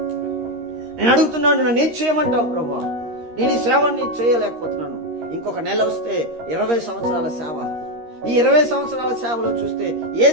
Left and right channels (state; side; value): late; left; 13 ms